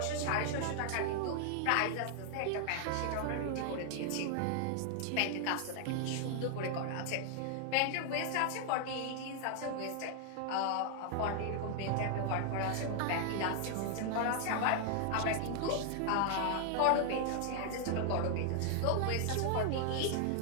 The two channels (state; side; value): different; both; correlation 0.00